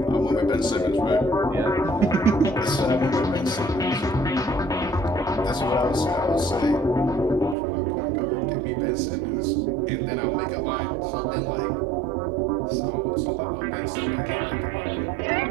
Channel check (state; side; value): drops out; left; at 7.6 s